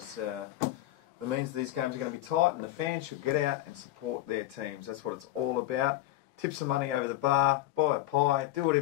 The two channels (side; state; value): right; quieter; 15.2 dB